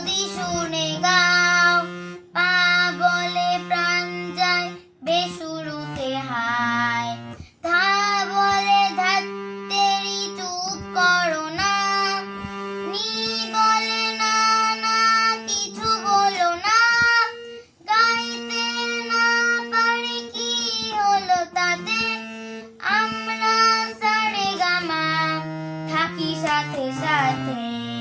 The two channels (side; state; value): both; identical; correlation 1.00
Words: শুনে গাও, পা বলে প্রাণ যায় বেসুরুতে হায়, ধা বলে ধাত্তেরি চুপ করো না, নি বলে না না কিছু বলো না, গাইতে না পারি কি হলো তাতে, আমরা সারে গামা থাকি সাথে সাথে,